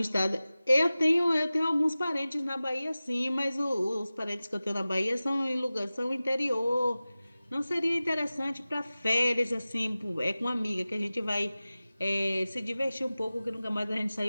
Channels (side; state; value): both; inverted; correlation -0.97